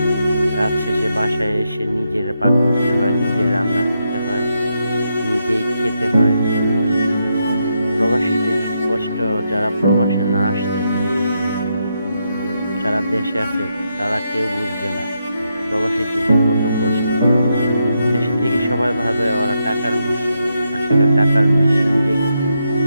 কাজ শেষে বাসায় এসে নিজের পাক করতে হয়, নিজে রান্না করতে হয়, নিজেই খেতে হয়। প্রবাসীদের কষ্ট যারা প্রবাসে না আসছে, যারা দেশে আছে তারা কেউ বুঝবে না প্রবাসীদের যে কত কষ্ট। দেশে থেকে সবাই ভাবে ওরা টাকার মেশিন। আসলে টাকার মেশিন যে কি?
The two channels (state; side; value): inverted; both; correlation -0.82